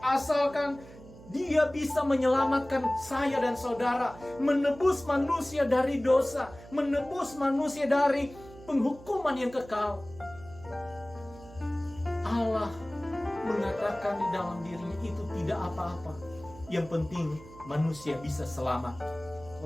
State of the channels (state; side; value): noise; right; hum, 19 dB below the sound